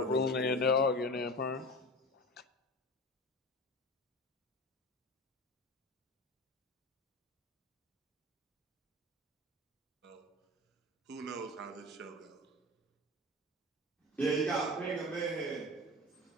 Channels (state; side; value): normal; both; correlation 0.31